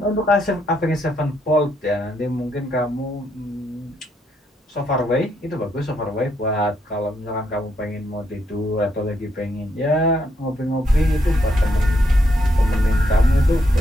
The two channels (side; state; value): both; normal; correlation 0.76